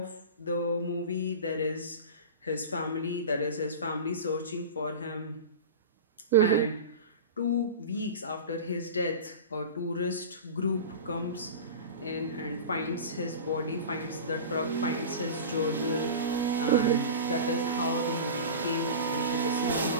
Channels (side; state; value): both; inverted; correlation -0.31